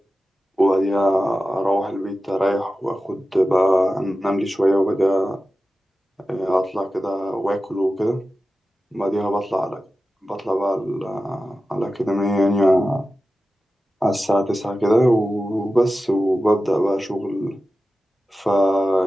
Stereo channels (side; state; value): both; normal; correlation 0.94